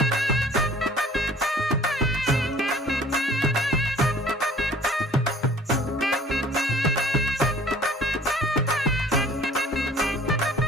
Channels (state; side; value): normal; both; correlation 0.51